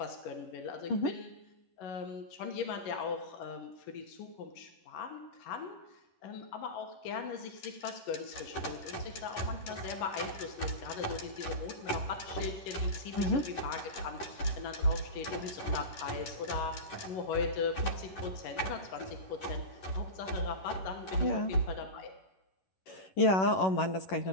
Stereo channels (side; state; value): right; late; 11 ms